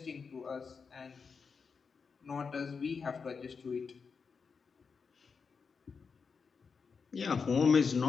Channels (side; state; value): right; quieter; 5.4 dB